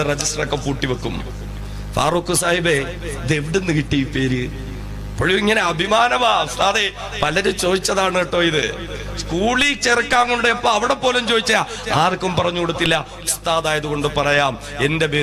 രജിസ്റ്റർ ഒക്കെ പൂട്ടി വെക്കും. ഫാറൂഖ് സാഹിബേ, ഇത് എവിടുന്ന് കിട്ടി ഈ പേര്? ഇപ്പോഴും ഇങ്ങനെ അഭിമാനമാ ഉസ്താദേ. പലരും ചോദിച്ചതാണ് കേട്ടോ ഇത്. സ്കൂളിൽ ചേർക്കാൻ കൊണ്ടപ്പോ അവിടെ പോലും ചോദിച്ചാ ആർക്കും പറഞ്ഞു കൊടുത്തില്ല. ഉസ്താദായത് കൊണ്ട് പറയാം, എന്റെ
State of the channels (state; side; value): identical; both; correlation 1.00